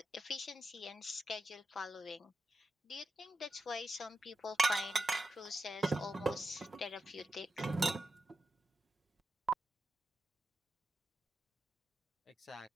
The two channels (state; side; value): normal; both; correlation 0.88